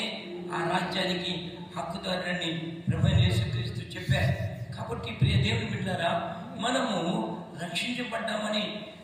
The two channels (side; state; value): both; identical; correlation 1.00